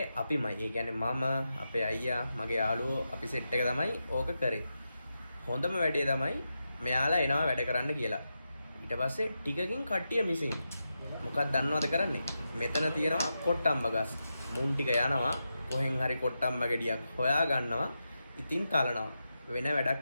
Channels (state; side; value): inverted; both; correlation -0.88